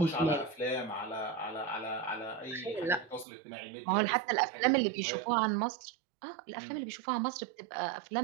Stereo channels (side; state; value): left; drops out; at 3.2 s